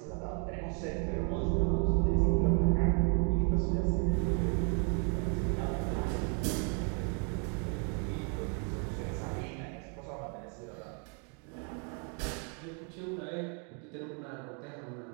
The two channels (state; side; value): quieter; left; 39.2 dB